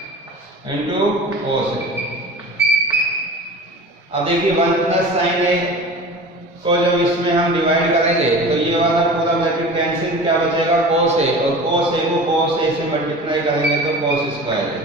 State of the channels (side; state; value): both; normal; correlation 0.37